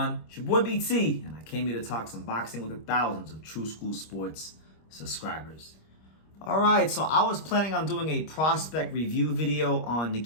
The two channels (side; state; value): right; late; 25 ms